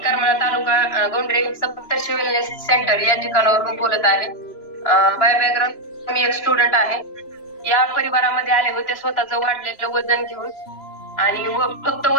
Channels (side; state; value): right; late; 3.0 ms